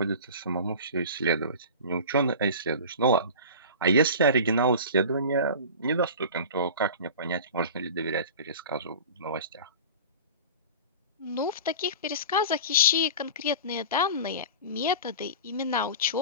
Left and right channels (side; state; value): both; inverted; correlation -0.35